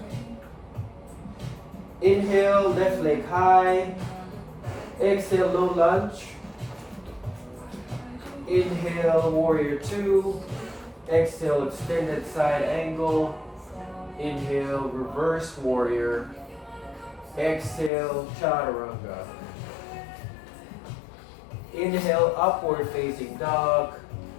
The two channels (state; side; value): drops out; right; at 17.9 s